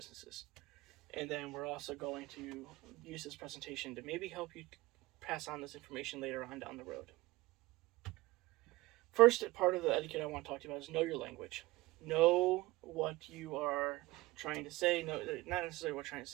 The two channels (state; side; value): quieter; left; 20.1 dB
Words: And then we're also going to use this presentation to maybe help you pass on this information later on down the road. First part of the etiquette I want to talk to you about is know your language. Know what you are trying to say. No, not necessarily what you're trying to